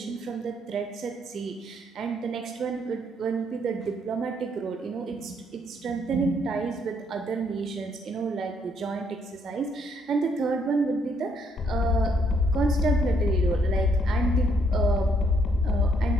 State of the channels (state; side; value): normal; both; correlation 0.71